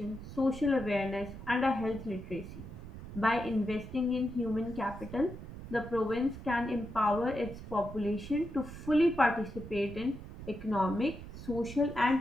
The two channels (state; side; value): noise; right; rumble, 12 dB below the sound